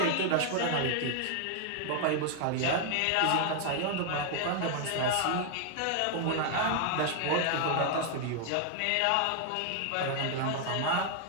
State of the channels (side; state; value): both; different; correlation 0.00